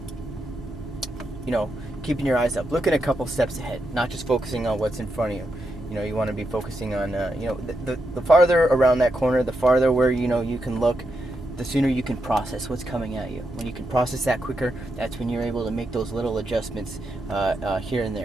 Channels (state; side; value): normal; both; correlation 0.84